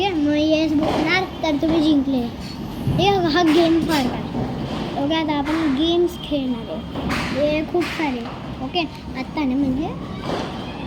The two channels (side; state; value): both; identical; correlation 1.00